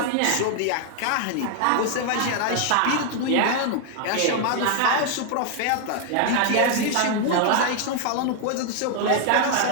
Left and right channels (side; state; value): both; different; correlation 0.00